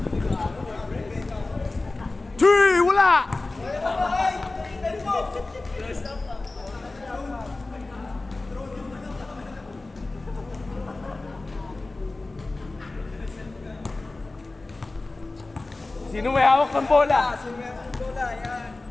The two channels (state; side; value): quieter; right; 3.2 dB